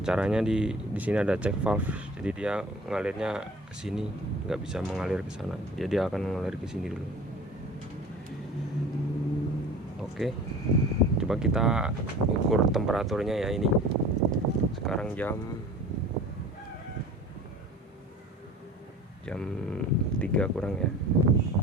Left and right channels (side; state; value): both; normal; correlation 0.42